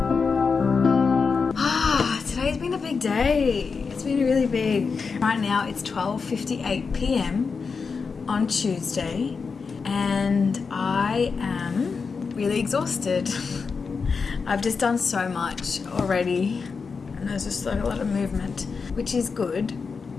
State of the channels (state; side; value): quieter; right; 5.1 dB